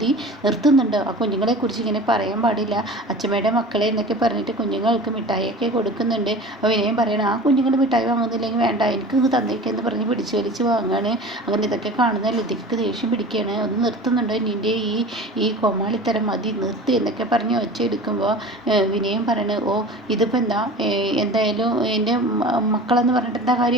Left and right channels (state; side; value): normal; both; correlation 0.38